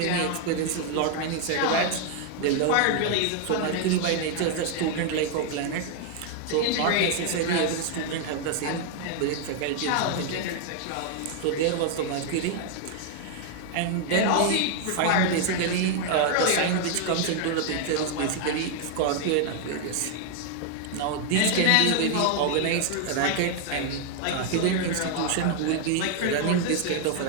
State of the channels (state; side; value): different; both; correlation 0.00